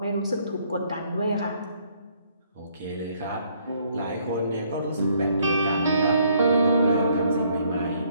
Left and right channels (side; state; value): both; inverted; correlation -0.67